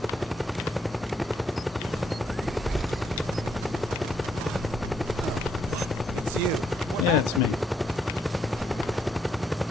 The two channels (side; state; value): both; normal; correlation 0.75